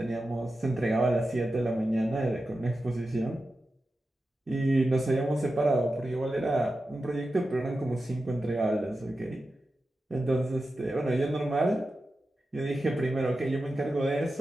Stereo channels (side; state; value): both; normal; correlation 0.92